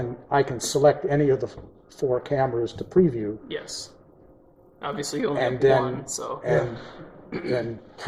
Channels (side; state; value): both; identical; correlation 1.00